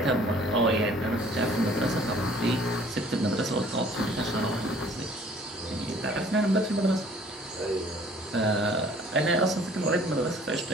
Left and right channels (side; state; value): both; normal; correlation 0.54